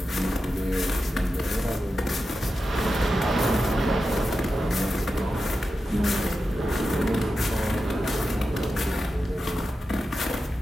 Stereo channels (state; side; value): normal; both; correlation 0.91